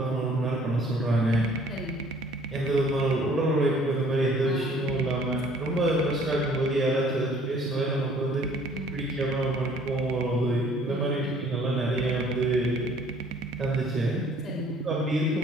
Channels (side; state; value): both; normal; correlation 0.56